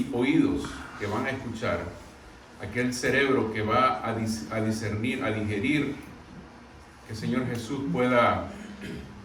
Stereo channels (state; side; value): identical; both; correlation 1.00